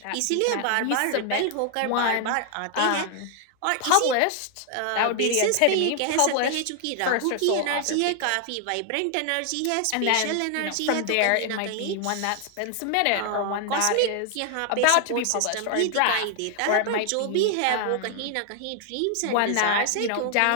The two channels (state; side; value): different; both; correlation 0.00